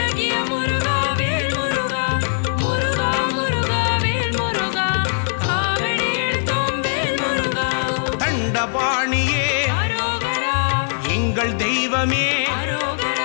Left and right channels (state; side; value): silent; right; digital silence